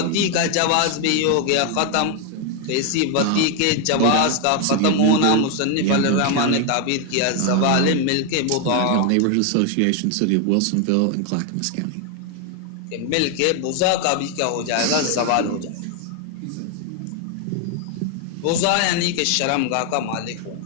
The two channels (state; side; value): different; both; correlation 0.01